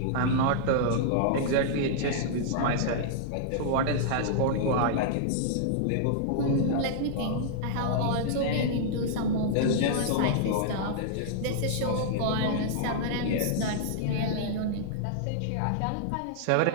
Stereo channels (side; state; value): both; different; correlation -0.01